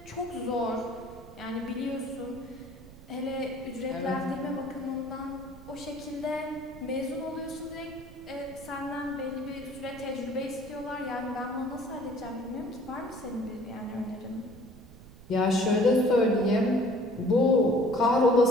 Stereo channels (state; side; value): noise; right; rumble, 19 dB below the sound